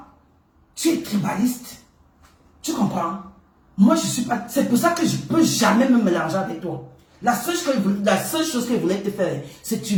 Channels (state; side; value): identical; both; correlation 1.00